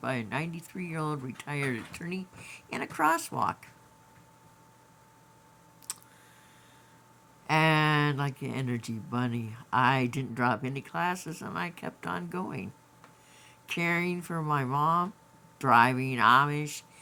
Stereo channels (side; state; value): both; identical; correlation 1.00